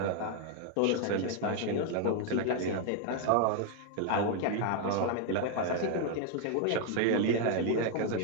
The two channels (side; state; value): both; different; correlation 0.00